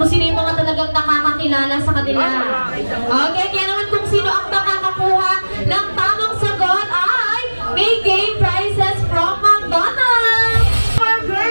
sino yung mga talagang nakakakilala sa kanila. Okay, kaya naman kung sino ang makakakuha ng tamang sagot ay may game prizes from McDonald's. Our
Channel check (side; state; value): both; inverted; correlation -1.00